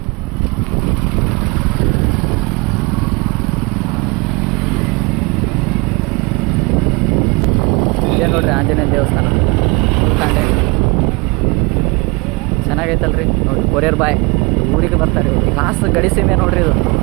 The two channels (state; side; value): quieter; left; 27.5 dB